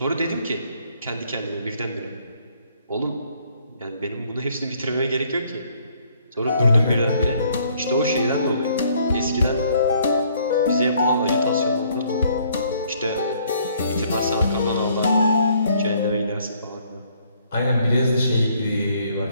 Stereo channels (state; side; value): inverted; both; correlation -0.65